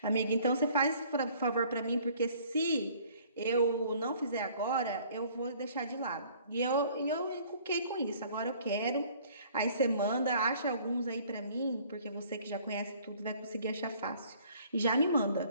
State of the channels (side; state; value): both; inverted; correlation -0.56